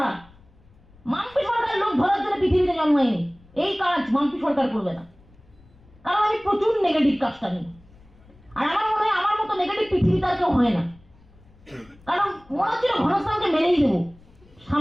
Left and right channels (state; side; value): noise; left; rumble, 27 dB below the sound